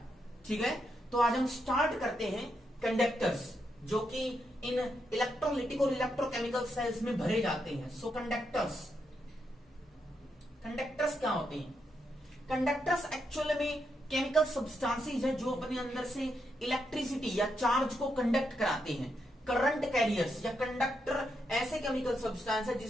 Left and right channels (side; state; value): both; normal; correlation 0.81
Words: ठीक है, तो आज हम स्टार्ट करते हैं कंडक्टर्स, जो कि इन इलेक्ट्रोलिटिक और इलेक्ट्रोकेमिकल सेल्स में भरे जाते हैं। सो कंडक्टर्स क्या होते हैं? कंडक्टर्स एक्चुअली में केमिकल सब्सटेंसेस है जो अपने अंदर से इलेक्ट्रिसिटी या चार्ज को कंडक्ट कराते हैं। करंट कैरियर्स या कंडक्टर ऐसे केमिकल सब्सटेंस है